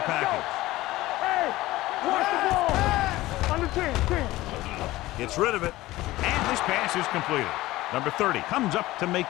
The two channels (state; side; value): quieter; right; 17.6 dB